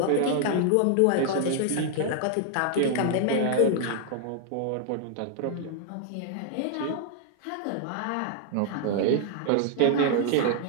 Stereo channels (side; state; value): both; different; correlation 0.00